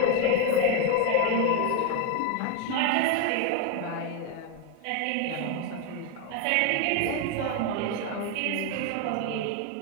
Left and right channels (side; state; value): both; different; correlation 0.01